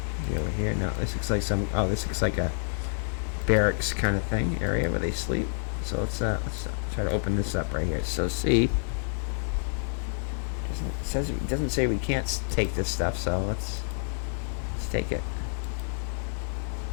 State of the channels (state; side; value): silent; right; digital silence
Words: he over here? No, this looks like some... Oh, this looks like a barracks kind of thing, area where they sleep. So let's try to open this up right here. So C. It doesn't say we can't take this stuff, so let's take it.